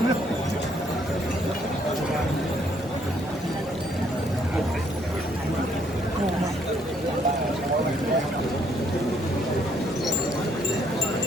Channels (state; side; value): normal; both; correlation 0.69